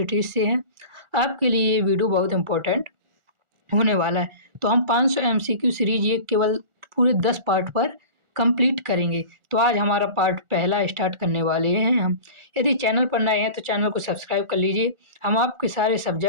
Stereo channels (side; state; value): left; late; 1.4 ms